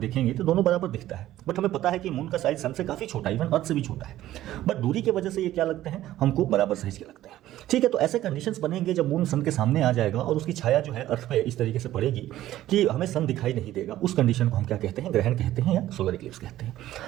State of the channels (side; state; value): left; quieter; 14.0 dB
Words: तो दोनों बराबर दिखता है। बट हमें पता है कि मून का साइज सन से काफ़ी छोटा है, इवन अर्थ से भी छोटा है, बट दूरी की वजह से ये क्या लगते हैं, हमको बराबर साइज के लगते हैं। ठीक है, तो ऐसे कंडीशंस बनेंगे जब मून सन के सामने आ जाएगा और उसकी छाया जो है अर्थ पे इस तरीके से पड़ेगी कि हमें सन दिखाई नहीं देगा। उस कंडीशन को हम क्या कहते हैं, ग्रहण कहते हैं या सोलर इक्लिप्स कहते हैं।